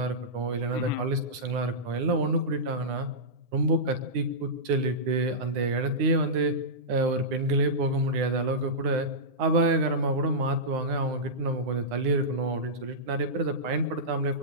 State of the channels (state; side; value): late; left; 9.9 ms